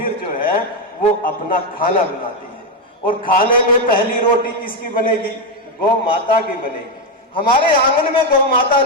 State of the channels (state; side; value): normal; both; correlation 0.06